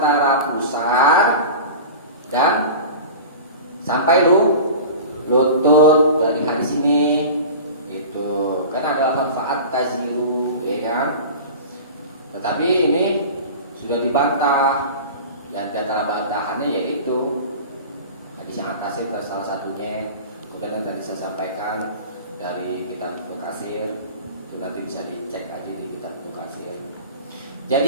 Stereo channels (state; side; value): inverted; both; correlation -0.35